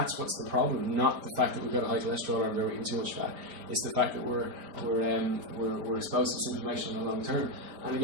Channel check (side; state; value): left; late; 5.1 ms